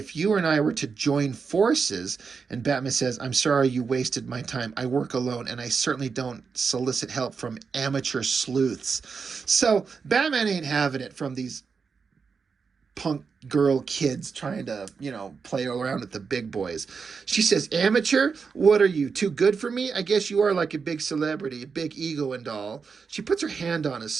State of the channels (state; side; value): quieter; left; 5.4 dB